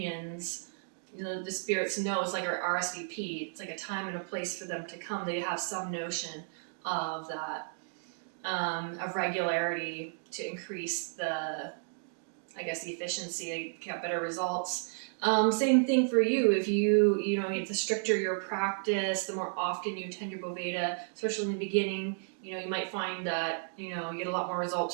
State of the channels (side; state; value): left; silent; digital silence